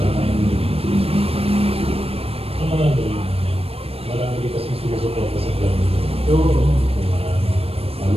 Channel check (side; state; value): left; late; 0.28 ms